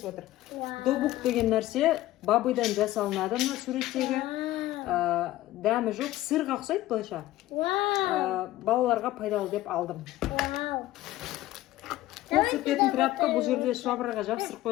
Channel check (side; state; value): right; quieter; 15.9 dB